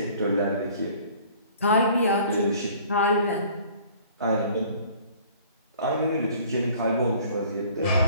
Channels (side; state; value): both; inverted; correlation -0.53